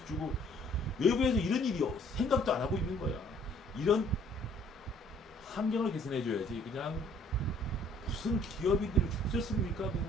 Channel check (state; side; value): normal; both; correlation 0.59